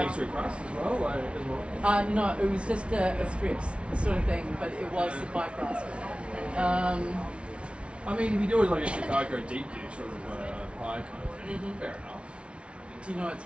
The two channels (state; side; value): late; left; 0.060 ms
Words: pastry crust as well. No, it was just a strips sort of thing, but it was the pie crust. I mean, if you do it like a Chicago deep dish sort of pie kind of thing, fair enough. Do you know what's